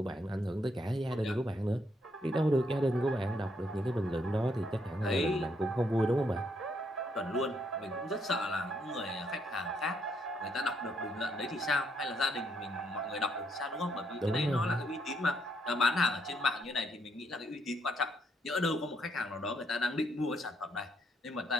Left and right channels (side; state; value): both; normal; correlation 0.74